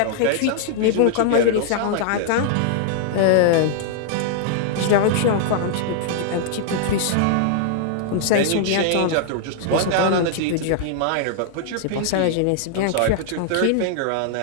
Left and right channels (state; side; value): different; both; correlation -0.01